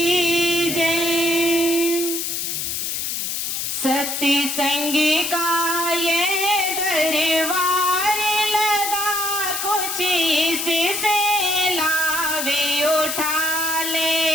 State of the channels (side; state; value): left; noise; hiss, 2 dB below the sound